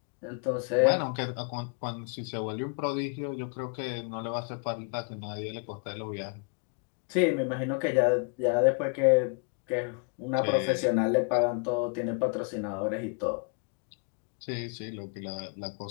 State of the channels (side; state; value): right; quieter; 38.4 dB